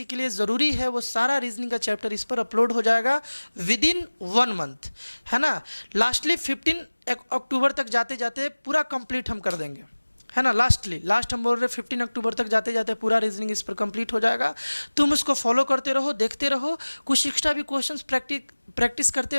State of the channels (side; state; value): both; inverted; correlation -1.00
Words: के लिए ज़रूरी है वो सारा रीजनिंग का चैप्टर इस पर अपलोड हो जाएगा विदिन 1 मंथ, है ना। लास्टली 15 अक्टूबर तक जाते जाते पूरा कंप्लीट हम कर देंगे, है ना। लास्ट हम बोल रहे 15 अक्टूबर तक जाते जाते पूरा रीजनिंग इस पर कंप्लीट हो जाएगा। तुम उसको फॉलो करते रहो, देखते रहो, कुछ एक्स्ट्रा भी क्वेश्चंस प्रैक्टिस करते